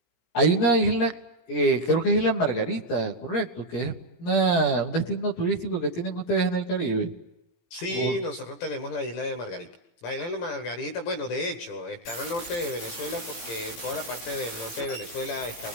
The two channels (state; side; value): late; right; 17 ms